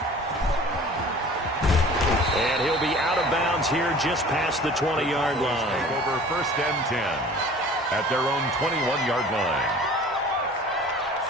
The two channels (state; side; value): normal; both; correlation 0.45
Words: And he'll be out of bounds here just past the 20-yard line. Over 1st and 10 at their own 21-yard line.